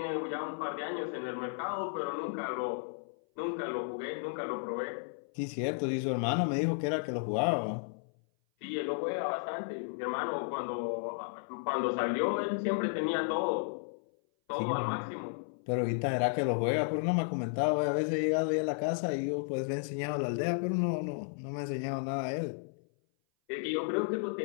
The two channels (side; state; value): right; silent; 55 dB below the other